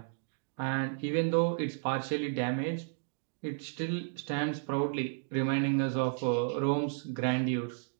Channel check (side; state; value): left; silent; digital silence